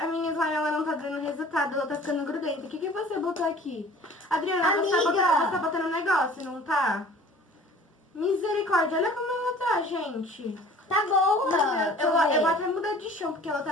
minha slime ela não tá dando resultado, ela tá ficando grudenta. O que você botou aqui? Adriana, você Amiga. tá botando um negócio, não tá? Misericórdia, olha como ela tá, gente. Tá boa. Eu vou até mudar de chão, porque ela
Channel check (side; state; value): both; normal; correlation 0.48